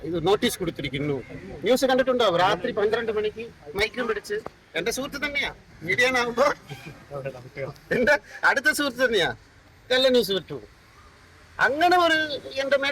ഇത് നോട്ടീസ് കൊടുത്തിരിക്കുന്നു. ന്യൂസ് കണ്ടിട്ടുണ്ടാവും, രാത്രി 12 മണിക്ക് മൈക്കും പിടിച്ച്. എന്റെ സുഹൃത്ത് തന്നെയാ, മീഡിയനാകുമ്പോ എന്റെ അടുത്ത സുഹൃത്ത് തന്നെയാ കള്ള ന്യൂസ് വിട്ടു. അങ്ങനെ ഒരു എന്റെ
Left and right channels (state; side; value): identical; both; correlation 1.00